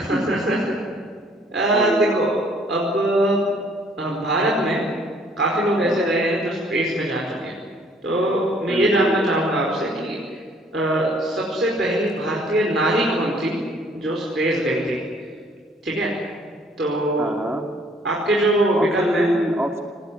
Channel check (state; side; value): normal; both; correlation 0.61